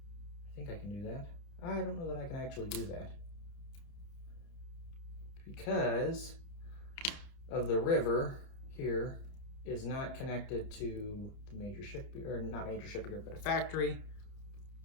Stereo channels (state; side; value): late; right; 29 ms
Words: I think I can do that. I don't know that I can actually do that, because of the river here is not connected to the major shipyard, or not major shipyard, but a factory.